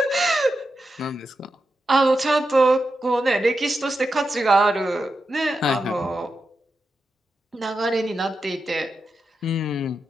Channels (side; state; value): both; normal; correlation 0.88